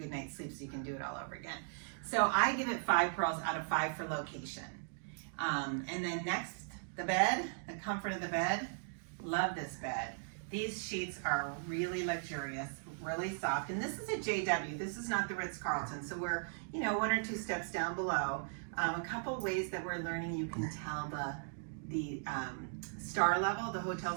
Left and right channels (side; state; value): left; silent; digital silence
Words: night's sleep so you can do it all over again. So I give it 5 Pearls out of 5 for location. And then next, the bed, the comfort of the bed. Love this bed. These sheets are really luxurious, really soft. And this is a JW. This is not the Ritz Carlton. So we're, 1 or 2 steps down below. A couple ways that we're learning you can tell the star level, the hotel